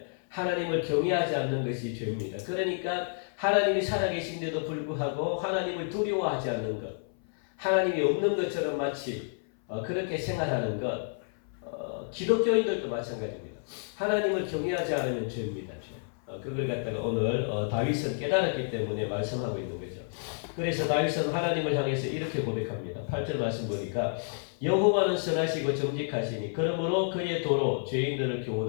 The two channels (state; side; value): silent; right; 58 dB below the other